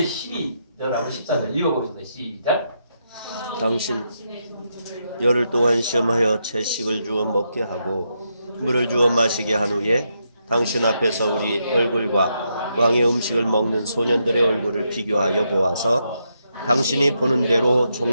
12절하고 14절 읽어보겠습니다. 시작. 당신 열흘 동안 시험하여 채식을 주어 먹게 하고 물을 주어 마시게 한 후에 당신 앞에서 우리 얼굴과 왕의 음식을 먹는 소년들의 얼굴을 비교하여 보아서 당신이 보는 대로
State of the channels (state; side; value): inverted; both; correlation -0.81